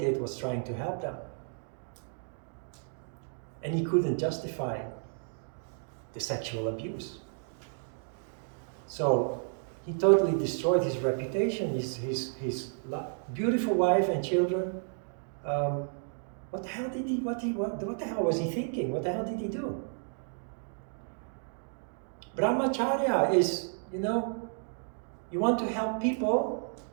did was trying to help them. And he couldn't justify the sexual abuse. So he totally destroyed his reputation, his beautiful wife and children. What the hell did what the hell was he thinking? What the hell did he do? Brahmacharya is, you want to help people,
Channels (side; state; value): left; silent; 56 dB below the other